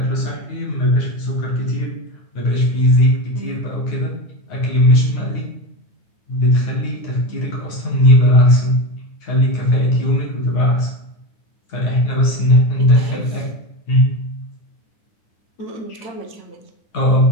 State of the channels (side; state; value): right; late; 9.6 ms